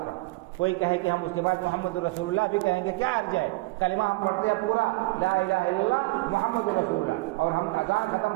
پر، کوئی کہے کہ ہم اس کے بعد محمد رسول اللہ بھی کہیں گے، کیا حرج ہے؟ کلمہ ہم پڑھتے ہیں پورا لا الہ الا اللہ محمد رسول اللہ، اور ہم اذان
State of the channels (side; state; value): left; quieter; 22.7 dB